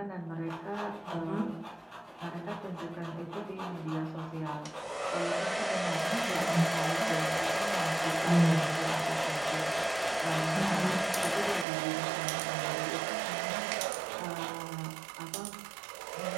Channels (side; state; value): left; drops out; at 11.7 s